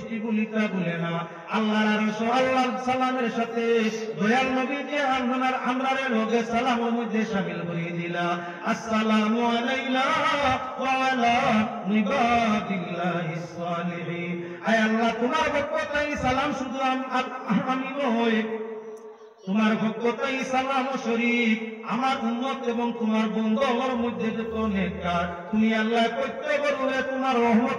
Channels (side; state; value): both; identical; correlation 1.00